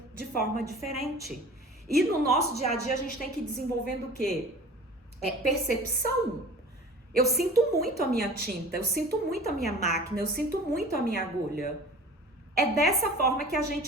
de forma diferente. E no nosso dia a dia a gente tem que ir desenvolvendo o quê? Percepção. Eu sinto muito a minha tinta, eu sinto muito a minha máquina, eu sinto muito a minha agulha. É dessa forma que a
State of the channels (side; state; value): both; normal; correlation 0.42